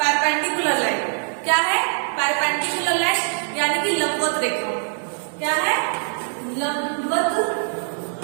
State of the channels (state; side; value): silent; left; 60 dB below the other